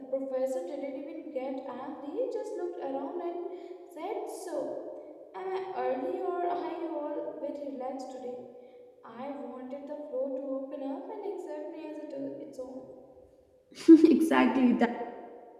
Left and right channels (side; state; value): both; identical; correlation 1.00